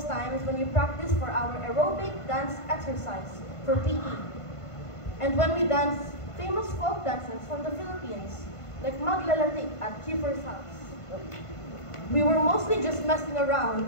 times when we practiced for our aerobic dance exercise for PE, and when we danced famous folk dances from the Philippines, like Maglalatik at Kiefer's house. We were mostly just messing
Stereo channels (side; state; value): right; late; 1.5 ms